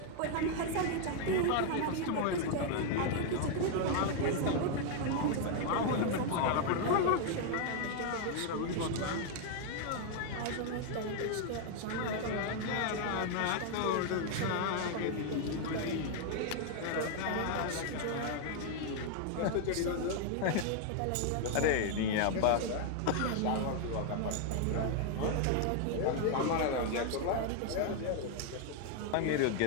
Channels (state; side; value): different; both; correlation 0.00